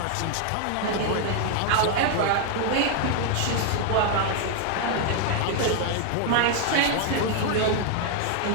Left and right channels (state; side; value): different; both; correlation 0.00